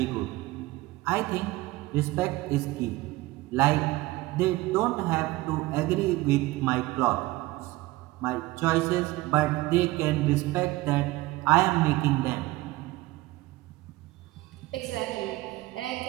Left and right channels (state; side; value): quieter; left; 19.3 dB